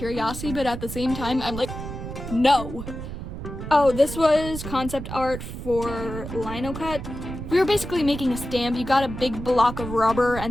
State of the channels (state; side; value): noise; right; rumble, 8 dB below the sound